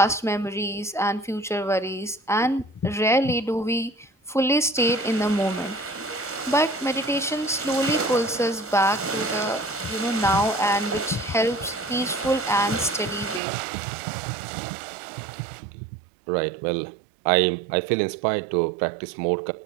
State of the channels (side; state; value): left; drops out; at 13.4 s